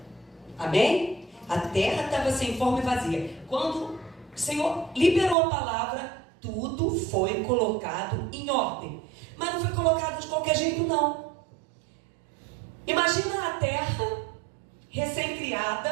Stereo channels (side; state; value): left; drops out; at 5.4 s